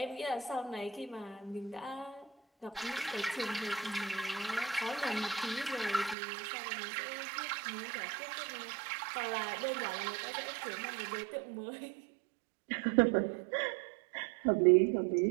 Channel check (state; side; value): drops out; left; at 6.2 s